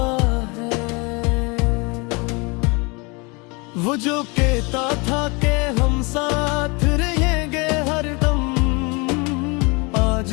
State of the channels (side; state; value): right; quieter; 28.6 dB